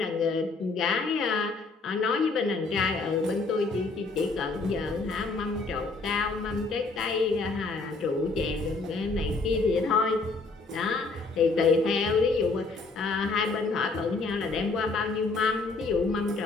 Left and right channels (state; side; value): quieter; right; 3.8 dB